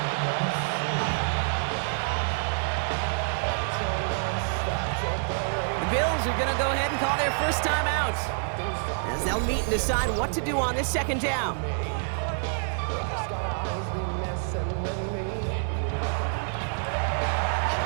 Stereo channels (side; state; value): left; silent; digital silence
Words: The Bills are going to go ahead and call their first time out as they'll meet and decide what to do on this second down.